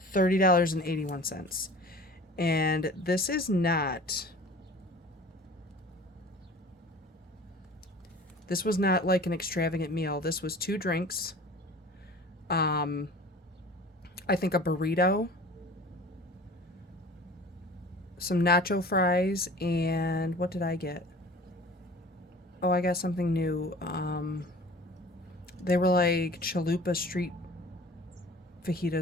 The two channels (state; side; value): normal; both; correlation 0.43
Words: $30.81. And this is not, this was not like an extravagant meal. This was 2 drinks, I think a burrito, some nacho fries, and what did I get? Oh, I got something new. They were like chalupa street